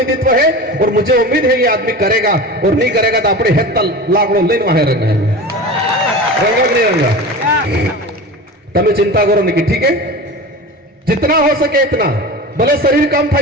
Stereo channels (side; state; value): both; normal; correlation 0.32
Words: है और मुझे उम्मीद है ये आदमी करेगा, और नहीं करेगा तो अपने हेत लाकड़ो लेन वहां रंगा नहीं रंगा। तब चिंता करो नहीं, ठीक है, जितना हो सके इतना, भले शरीर कम था,